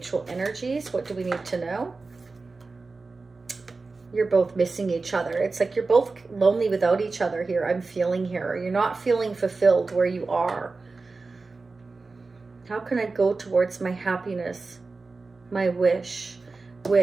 energies? What do we need to know? You're both missing each other. It's like you're both lonely without each other here. I'm feeling here. You're not feeling fulfilled where you are. How can I go towards my happiness? My wish.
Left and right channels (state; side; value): quieter; left; 3.9 dB